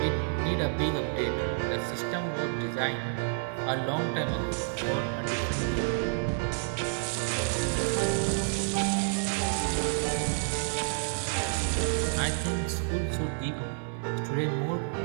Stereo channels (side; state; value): left; silent; digital silence